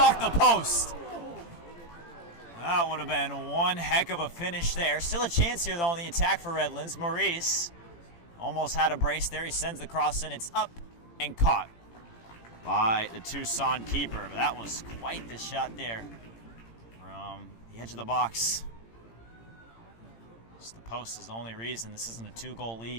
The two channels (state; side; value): late; right; 18 ms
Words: the post. That would have been one heck of a finish there. Still a chance here, though, on the attack for Redlands. Maurice almost had a brace there. He sends the cross in. It's up and caught by the Tucson keeper. But that was quite the shot there from the edge of the box. Just the post is the only reason this isn't a 2-goal